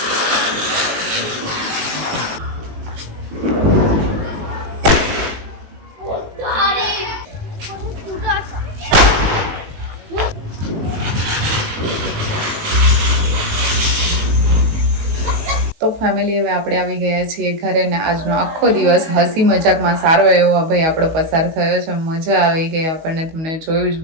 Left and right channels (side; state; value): left; late; 19 ms